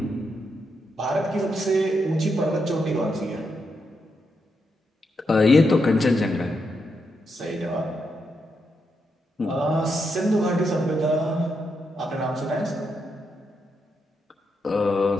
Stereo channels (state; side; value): normal; both; correlation 0.82